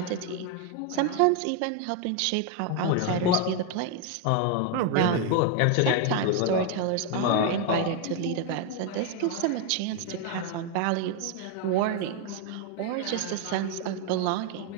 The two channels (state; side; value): different; both; correlation 0.01